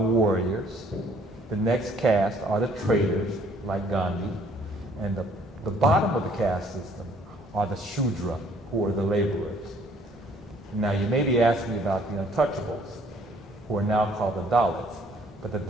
The next caste are the traders, like Gandhi. And the bottom of the caste system are the Shudra, who are the laborers. Now, you may be asking me about the untouchables, who are now called the Dalits. But the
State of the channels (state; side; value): normal; both; correlation 0.61